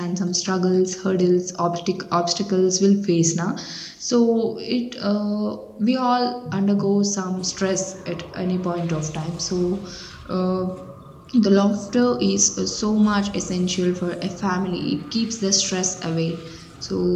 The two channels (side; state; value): both; identical; correlation 1.00